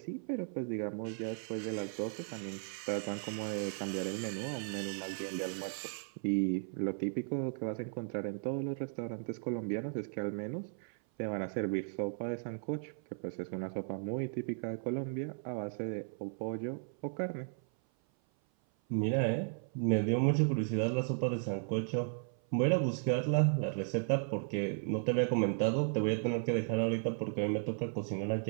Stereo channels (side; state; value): left; silent; 54 dB below the other